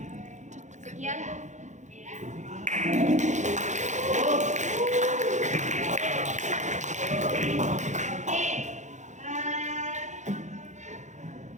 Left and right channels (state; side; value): late; left; 0.35 ms